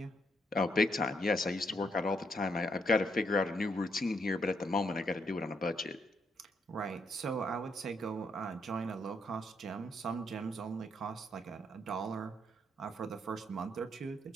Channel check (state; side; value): normal; both; correlation 0.76